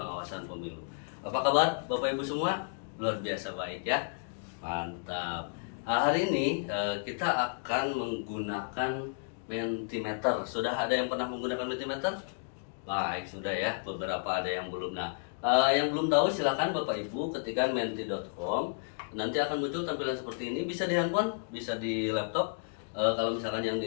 pemilu. Apa kabar Bapak Ibu semua? Luar biasa baik ya. Mantap. Hari ini kita akan menggunakan Mentimeter. Sudah ada yang pernah menggunakan Mentimeter? Baik, sudah ya. Beberapa ada yang belum. Nah, yang belum tahu silakan Bapak Ibu ketikkan menti.com. Nanti akan muncul tampilan seperti ini. Bisa di handphone, bisa di laptop. Kalau misalkan yang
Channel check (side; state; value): right; silent; digital silence